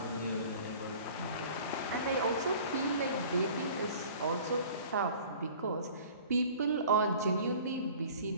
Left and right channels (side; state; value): both; inverted; correlation -0.46